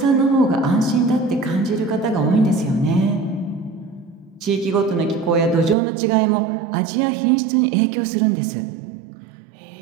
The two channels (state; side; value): drops out; left; at 5.8 s